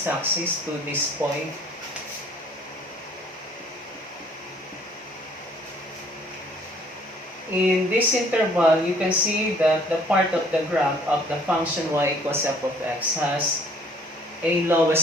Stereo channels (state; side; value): normal; both; correlation 0.58